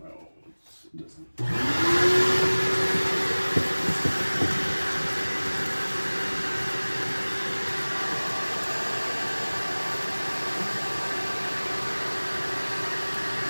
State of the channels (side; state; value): both; inverted; correlation -1.00